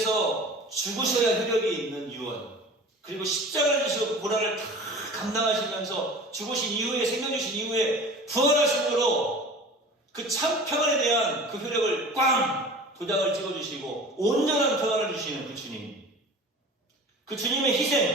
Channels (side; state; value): both; normal; correlation 0.40